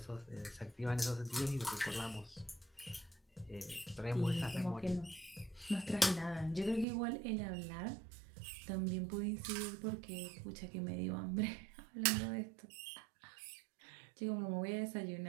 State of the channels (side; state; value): left; drops out; at 6.9 s